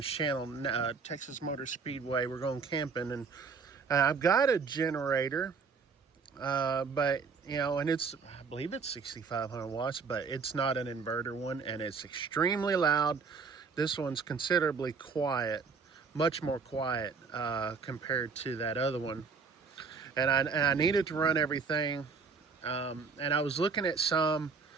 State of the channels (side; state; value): left; quieter; 5.1 dB